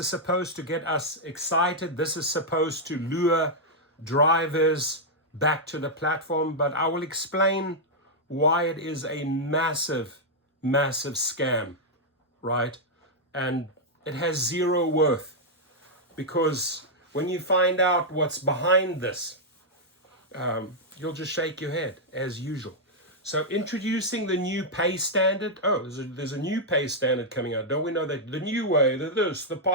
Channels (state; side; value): normal; both; correlation -0.05